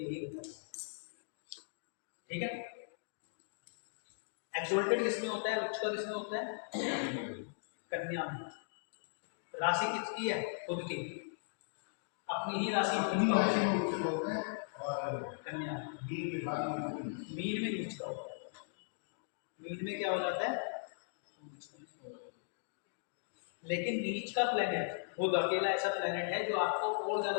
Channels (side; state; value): right; silent; digital silence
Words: होता है। ठीक है। एक्सोल्टेड किसमें होता है, उच्च का किसमें होता है? कन्या में। राशि किसकी है? खुद की, अपनी ही राशि होता है और कन्या। मीन में नीच का होता है। मीन में क्या हो जाता है? लेकिन नीच का प्लेनेट बुध अकेला ऐसा प्लेनेट है जो आपको और